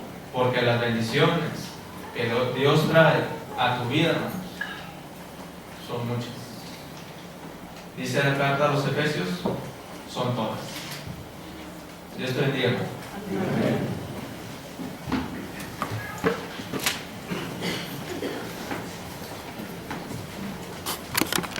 porque las bendiciones que Dios trae a tu vida, hermanos, son muchas. Dice la carta a los Efesios, son todas. Dios te bendiga.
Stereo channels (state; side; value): identical; both; correlation 1.00